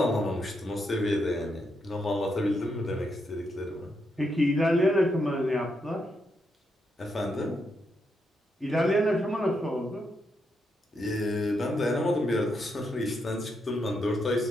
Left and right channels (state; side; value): normal; both; correlation 0.81